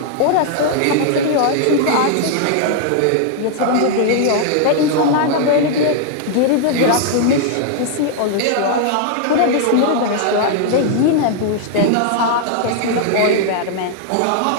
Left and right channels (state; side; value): different; both; correlation 0.00